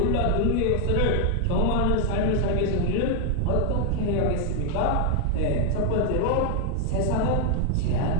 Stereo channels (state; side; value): different; both; correlation 0.00